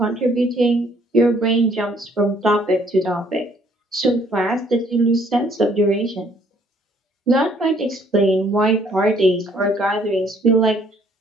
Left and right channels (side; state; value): both; normal; correlation 0.63